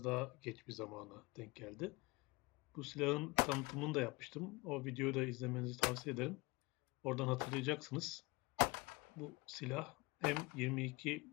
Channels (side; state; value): right; quieter; 23.2 dB